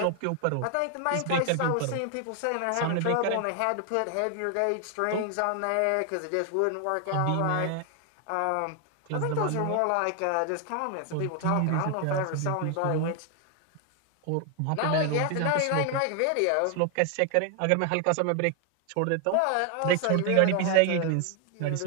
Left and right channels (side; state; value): both; different; correlation 0.00